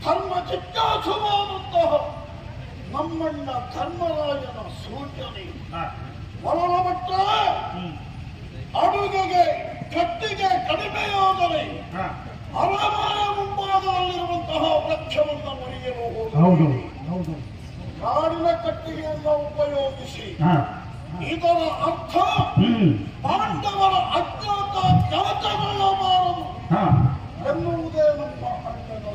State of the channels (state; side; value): identical; both; correlation 1.00